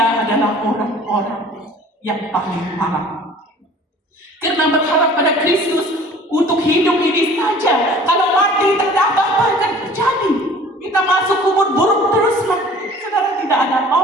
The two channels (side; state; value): both; normal; correlation 0.48